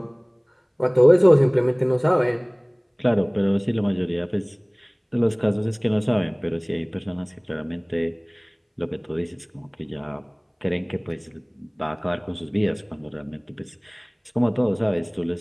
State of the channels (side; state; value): both; identical; correlation 1.00